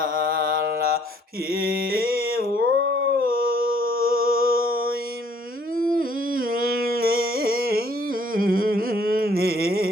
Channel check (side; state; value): both; normal; correlation 0.62